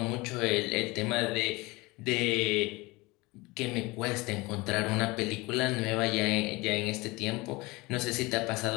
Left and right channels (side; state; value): right; quieter; 23.2 dB